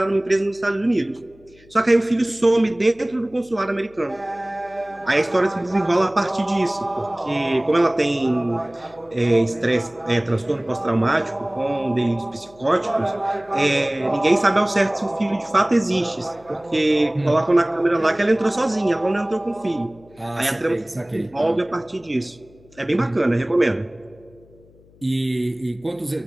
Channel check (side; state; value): left; noise; hum, 27 dB below the sound